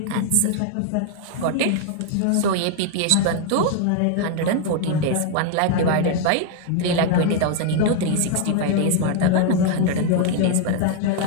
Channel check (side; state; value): both; different; correlation 0.00